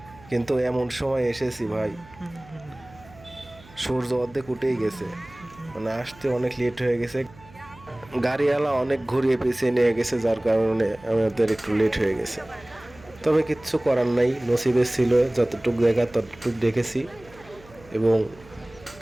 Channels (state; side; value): noise; right; hum, 23 dB below the sound